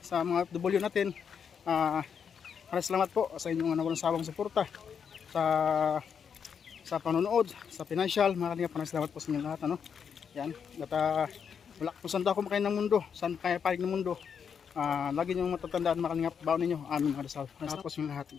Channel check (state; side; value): quieter; right; 7.1 dB